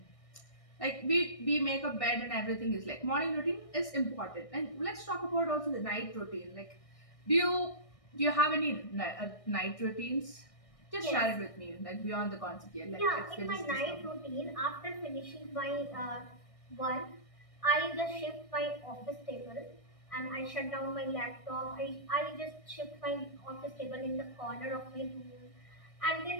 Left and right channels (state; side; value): late; right; 1.6 ms